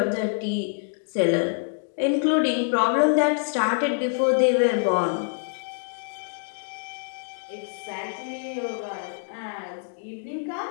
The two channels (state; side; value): silent; right; digital silence